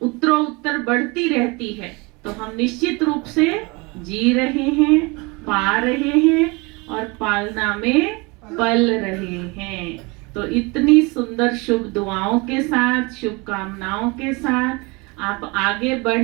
उत्तरोत्तर बढ़ती रहती है, तो हम निश्चित रूप से जी रहे हैं, पा रहे हैं और पालना में पल रहे हैं। तो इतनी सुंदर शुभ दुआओं के साथ, शुभकामनाओं के साथ आप आगे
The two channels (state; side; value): quieter; left; 27.0 dB